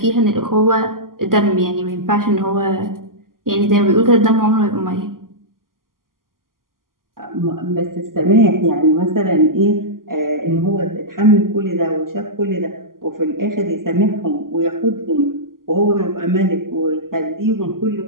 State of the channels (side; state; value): left; late; 0.91 ms